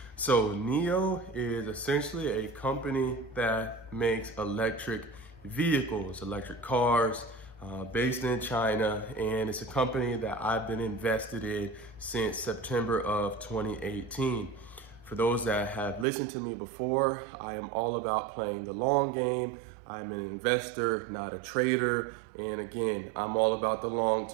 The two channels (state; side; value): drops out; left; at 16.1 s